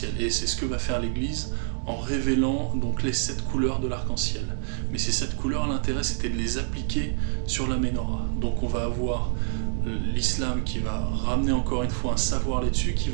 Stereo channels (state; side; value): silent; left; digital silence